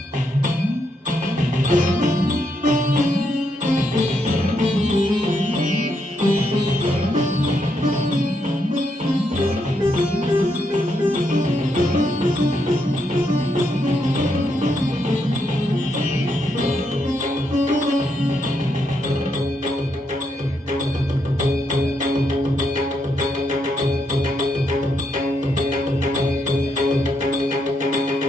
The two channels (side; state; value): both; normal; correlation 0.78